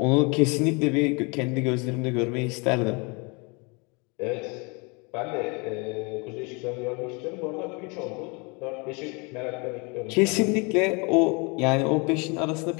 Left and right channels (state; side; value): quieter; right; 30.4 dB